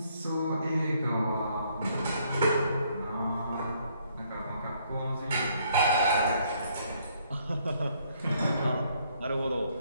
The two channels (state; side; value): inverted; both; correlation -0.67